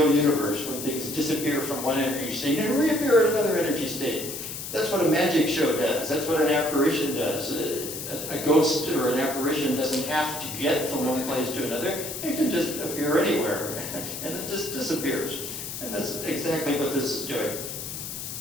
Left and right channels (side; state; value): left; noise; hiss, 7 dB below the sound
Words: universe when things disappear from one energy state and reappear at another energy state? That's what a magic show does. That's what an apparition does. A ghost or an apparition doesn't have to get from one place to another. It can just appear anywhere, and it just disappears. And that's exactly what this is doing.